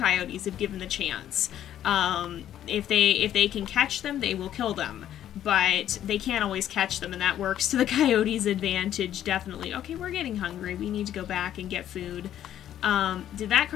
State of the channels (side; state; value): right; quieter; 11.2 dB